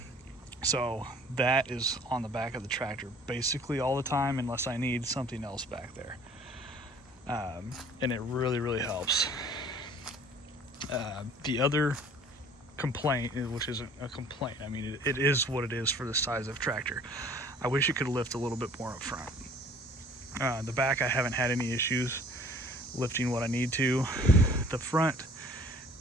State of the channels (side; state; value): both; normal; correlation 0.52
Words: So that is on the back of the tractor basically all the time, unless I need something else back there. And it really helps. The other complaint, which isn't a complaint, I mean, it is what it is for the size of tractor. I wish it could lift a little bit more up front. The back, I haven't had any issues lifting what I need to. The front,